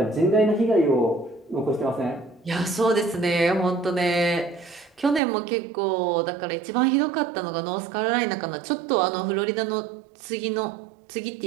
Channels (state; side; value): drops out; left; at 5.2 s